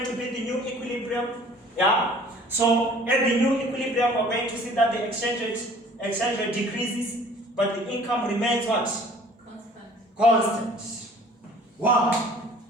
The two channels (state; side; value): normal; both; correlation 0.51